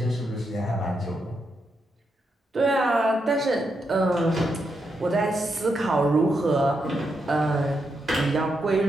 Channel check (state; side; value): normal; both; correlation 0.83